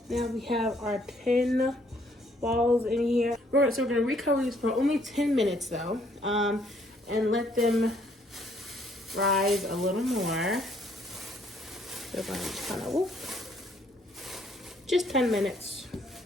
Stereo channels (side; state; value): both; normal; correlation 0.66